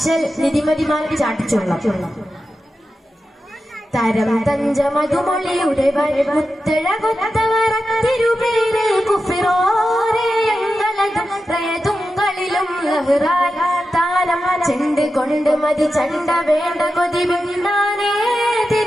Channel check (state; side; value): normal; both; correlation 0.91